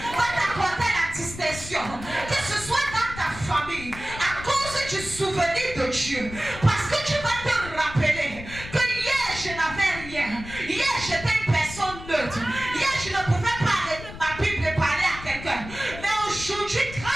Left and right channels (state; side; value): noise; left; rumble, 13 dB below the sound